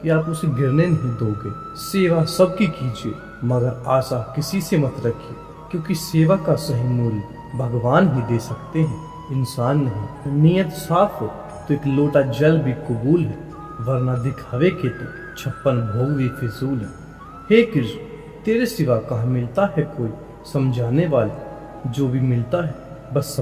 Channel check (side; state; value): both; identical; correlation 1.00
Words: कि आप उसे गिरने नहीं दोगे। सेवा सबकी कीजिए, मगर आशा किसी से मत रखिए, क्योंकि सेवा का सही मूल्य भगवान ही दे सकते हैं, इंसान नहीं। नीयत साफ हो तो एक लोटा जल भी कबूल है, वरना दिखावे के तो 56 भोग भी फिजूल है। हे कृष्ण, तेरे सिवा कहाँ मिलता है कोई समझाने वाले, जो भी मिलता है बस